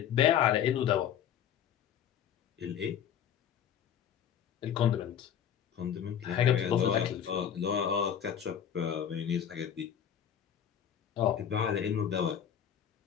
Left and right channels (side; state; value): right; quieter; 9.1 dB